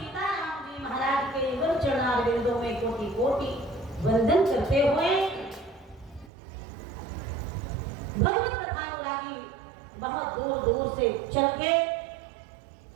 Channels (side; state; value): left; drops out; at 6.3 s